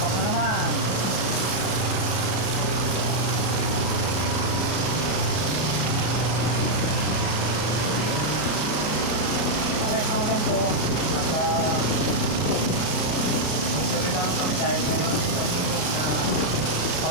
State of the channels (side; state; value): right; late; 33 ms